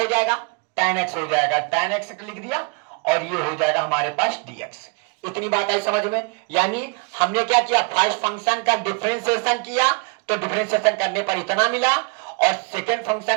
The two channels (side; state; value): left; quieter; 31.9 dB